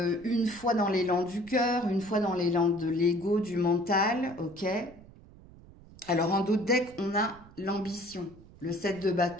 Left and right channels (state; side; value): noise; right; rumble, 21 dB below the sound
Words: une fois dans l'élan du cœur, une fois dans l'élan de l'ego, du mental, ok. Alors en dos de deck, on a l'ambition, le 7 de